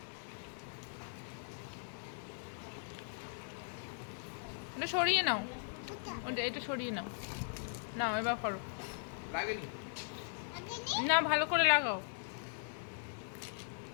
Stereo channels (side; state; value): right; silent; digital silence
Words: এটা সরিয়ে নাও, ওটা এটা সরিয়ে নাও। নাও এবার করো। লাগেনি? না ভালো করে লাগাও।